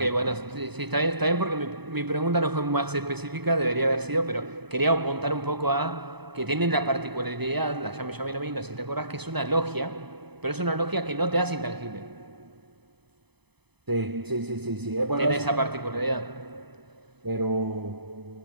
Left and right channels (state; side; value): late; left; 0.98 ms